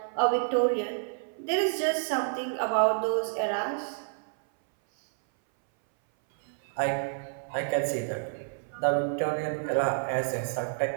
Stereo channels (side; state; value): left; silent; 59 dB below the other